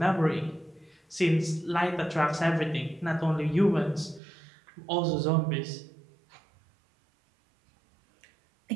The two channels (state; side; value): drops out; left; at 4.2 s